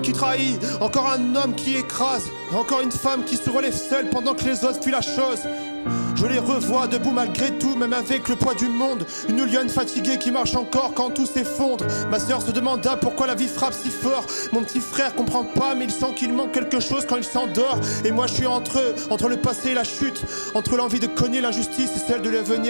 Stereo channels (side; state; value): both; inverted; correlation -1.00